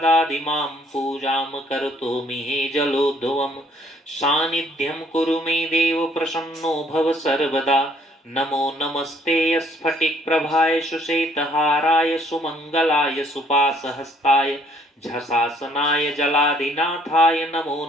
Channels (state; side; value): normal; both; correlation 0.63